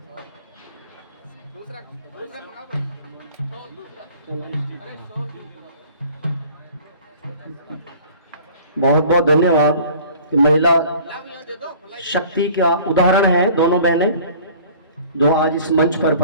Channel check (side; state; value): both; inverted; correlation -0.48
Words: बहुत बहुत धन्यवाद कि महिला शक्ति का उदाहरण है दोनों बहनें जो आज इस मंच पर